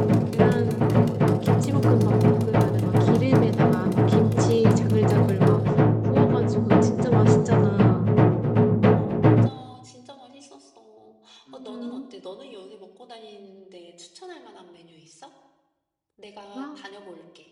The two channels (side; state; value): both; identical; correlation 1.00